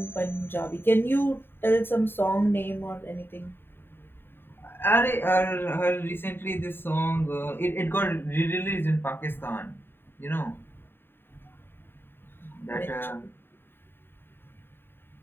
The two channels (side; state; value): right; late; 0.10 ms